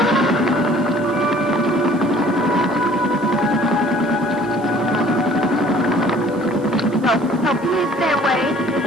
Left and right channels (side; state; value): right; noise; hiss, 27 dB below the sound